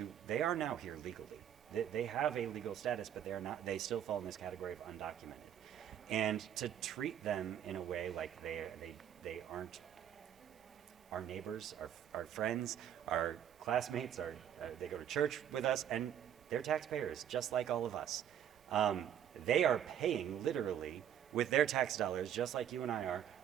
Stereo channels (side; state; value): left; quieter; 9.9 dB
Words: they are now here legally. They have a legal status, but they are not. They still fall in this category of undocumented. And to treat them in a way like they aren't our neighbors, our friends, our classmates, they go to church with us, and they're taxpayers, just like all of us. They are paying literally with their tax dollars, just like you and I are,